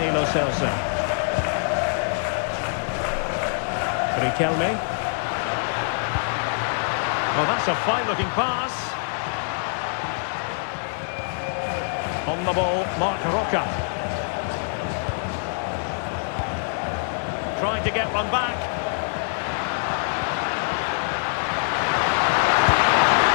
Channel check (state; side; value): silent; right; digital silence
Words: Lo Celso. Riquelme. Oh, that's a fine-looking pass. On the ball, Marc Roca. Trying to get one back.